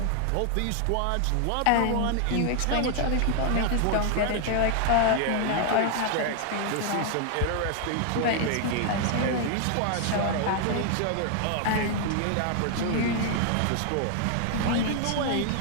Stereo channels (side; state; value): both; different; correlation 0.00